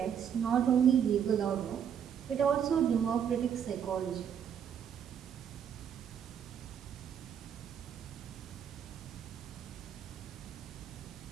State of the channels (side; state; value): left; quieter; 8.4 dB